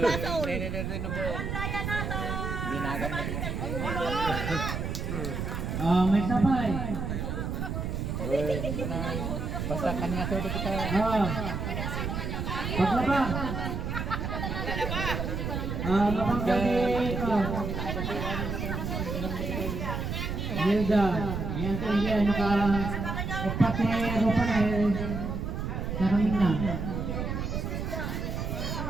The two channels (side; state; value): right; noise; rumble, 3 dB below the sound